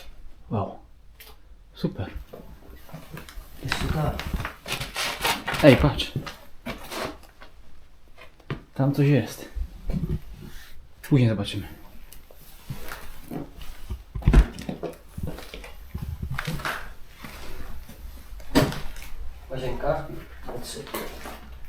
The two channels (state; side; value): identical; both; correlation 1.00